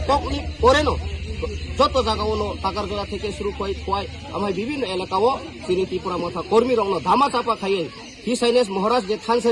ककनि परेनो যত জায়গাও টাকারগোলা থেকে শুরু হয় আমার বিভিন্ন এলাকাও তিনি ত্রিপুরা মথা কর্মী রং ধামা চাপা খাইয়ে হিজ হাইনেস মহারাজ যে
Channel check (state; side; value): identical; both; correlation 1.00